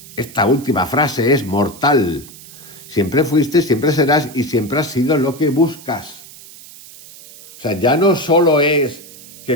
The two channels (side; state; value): right; noise; hiss, 19 dB below the sound